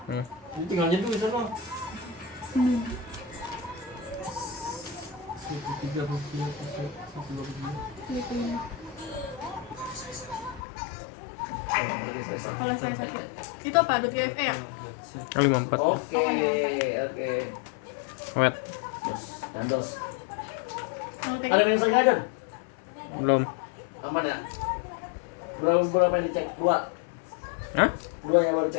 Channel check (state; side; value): drops out; right; at 10.6 s